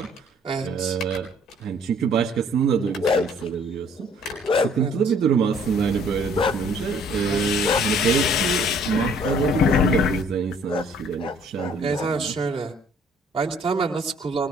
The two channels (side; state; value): both; normal; correlation 0.59